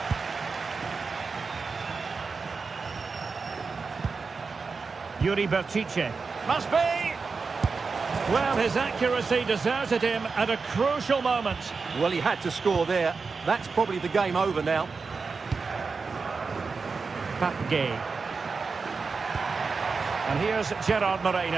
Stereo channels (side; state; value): left; quieter; 4.7 dB